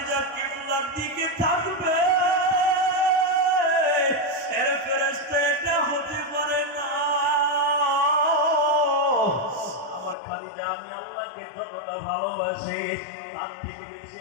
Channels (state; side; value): drops out; right; at 10.2 s